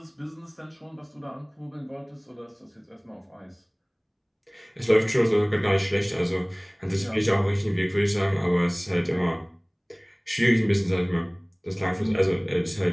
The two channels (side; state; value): both; identical; correlation 1.00